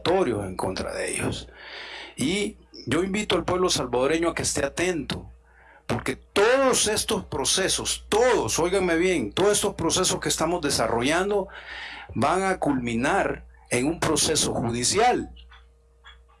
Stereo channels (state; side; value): identical; both; correlation 1.00